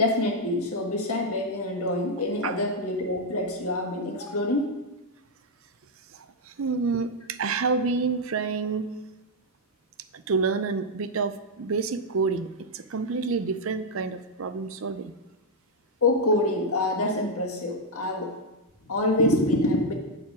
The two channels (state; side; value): normal; both; correlation 0.00